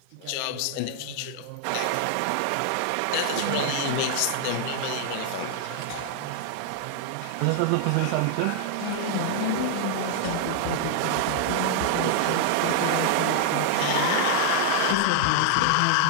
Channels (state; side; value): different; both; correlation -0.01